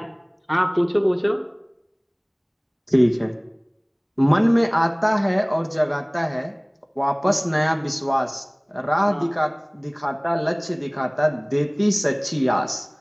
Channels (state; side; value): identical; both; correlation 1.00